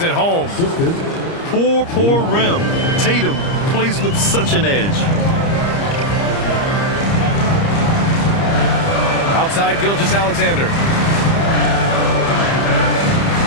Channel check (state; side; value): late; right; 30 ms